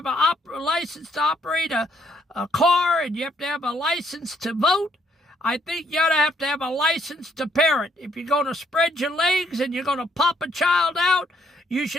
a license to operate a car, and you have to have a license to vote. I think you ought to have a license to parent. If you're going to spread your legs and you're going to pop a child out, you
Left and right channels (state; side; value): normal; both; correlation 0.70